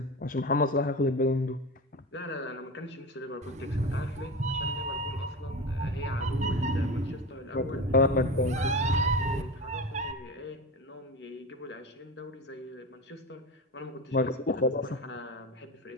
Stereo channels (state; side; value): normal; both; correlation 0.27